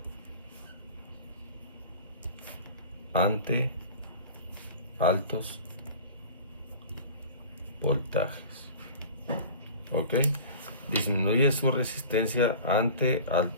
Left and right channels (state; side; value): inverted; both; correlation -0.39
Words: ante altos voltajes, ¿ok? Disminuye su resistencia ante